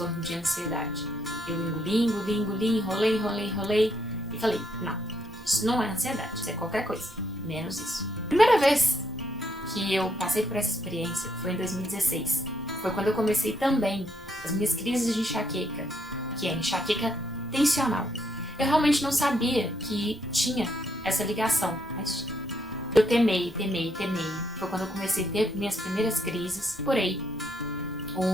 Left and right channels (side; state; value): left; noise; hum, 29 dB below the sound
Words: de ansiedade. Eu engoli, enrolei e falei, não, isso não é ansiedade, isso é qualquer coisa, menos isso. Primeira vez que eu passei por essa experiência foi em 2016. Foi quando eu comecei também as minhas crises de enxaqueca, que é enxaqueca tensional. Eu realmente não sabia que tinha essa ligação, mas eu temei. Foi quando eu comecei a ter minhas primeiras crises. Procurei